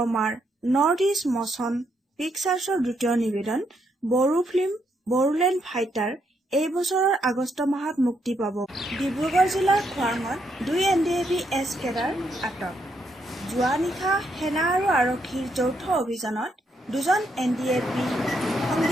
নৰ্থ ইষ্ট মচন পিকচাৰ্ছৰ দ্বিতীয় নিবেদন বড়ো ফিল্ম বড়োলেণ্ড ফাইটাৰ এই বছৰৰ আগষ্ট মাহত মুক্তি পাব। ডিব্ৰুগড় জিলাৰ খোৱাঙত 2 NDAB-S কেডাৰ আটক। যোৱা নিশা সেনা আৰু আৰক্ষীৰ যৌথ অভিযানত 2জন NDAB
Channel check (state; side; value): normal; both; correlation 0.77